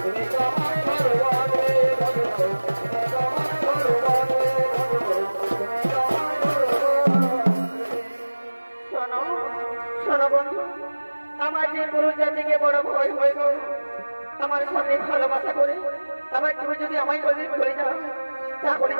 আমার যে পুরুষ জাতিকে বড় ভয় হয়ে গেল আমার সাথে ভালোবাসা করে আবার তুমি যদি আমায় বলে চলে যাও তাহলে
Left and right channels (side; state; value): both; inverted; correlation -1.00